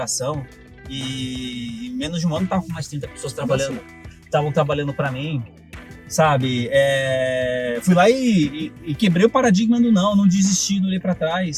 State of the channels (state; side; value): identical; both; correlation 1.00